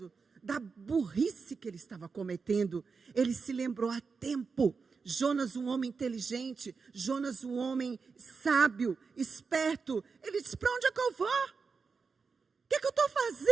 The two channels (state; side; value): quieter; left; 5.1 dB